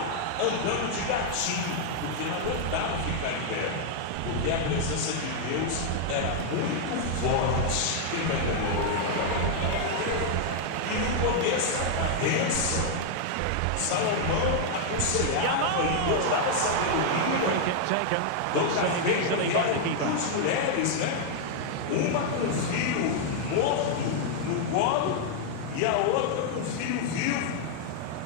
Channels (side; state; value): both; different; correlation 0.00